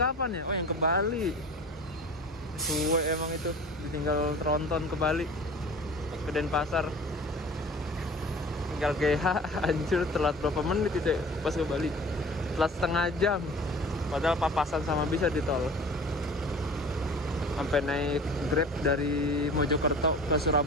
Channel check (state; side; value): normal; both; correlation 0.42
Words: ya? Oh, yang ke Bali. Suwe emang itu, ditinggal tronton ke Bali, ke Denpasar. Tinggal GH, anjir, telat berapa menit itu pas ke Bali? Telat setengah jam. Padahal papasan sama bisa di tol. Sampai naik Grab dari Mojokerto ke